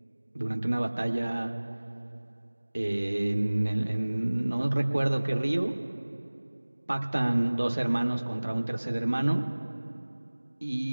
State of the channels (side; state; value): both; inverted; correlation -1.00